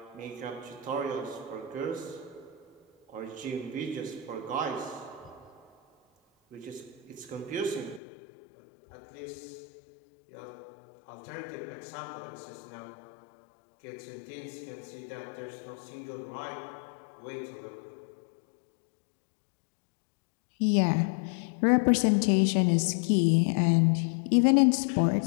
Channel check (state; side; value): drops out; right; at 8.0 s